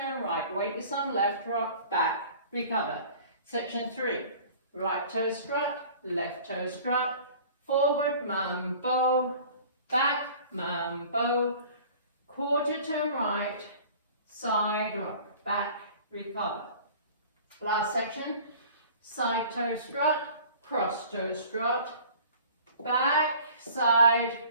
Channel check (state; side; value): inverted; both; correlation -0.47